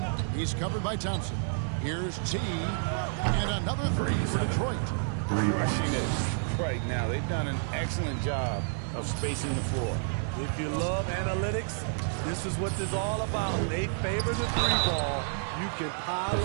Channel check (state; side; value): silent; left; digital silence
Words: He's covered by Thompson. Here's T. And another 3 for Detroit. Rushing it right now. They've done an excellent job of spacing the floor. If you love analytics, this is what this is all about. They favor the 3-ball. You can pile